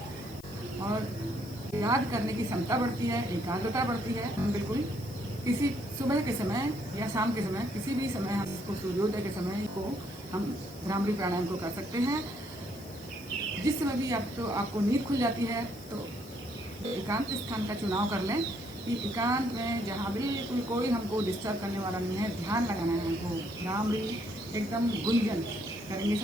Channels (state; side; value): noise; left; hiss, 20 dB below the sound